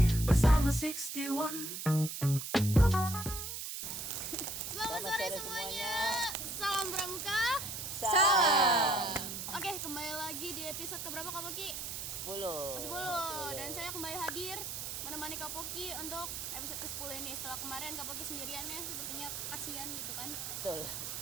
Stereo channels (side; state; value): right; noise; hiss, 5 dB below the sound